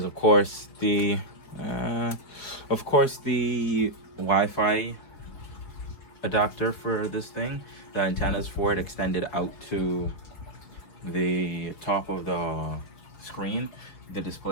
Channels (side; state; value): right; late; 4.5 ms